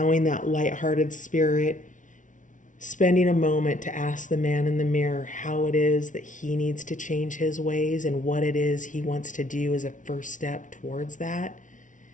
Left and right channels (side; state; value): right; late; 0.37 ms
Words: that lighthearted spirit, spending a moment to ask the man in the mirror how it is that he needs to change his ways and what it is he wants to do as a first step towards that,